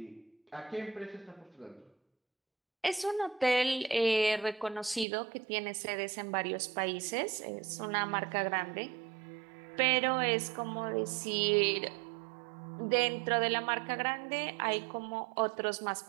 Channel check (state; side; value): drops out; left; at 5.1 s